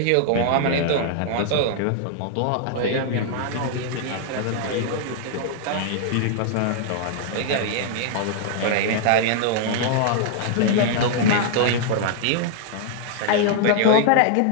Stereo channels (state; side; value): different; both; correlation -0.01